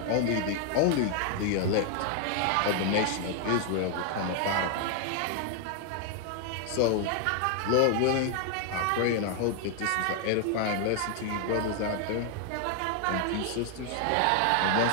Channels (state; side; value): different; both; correlation 0.01